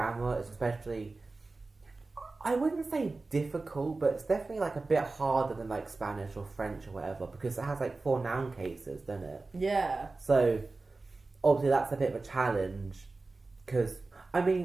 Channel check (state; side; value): quieter; left; 3.5 dB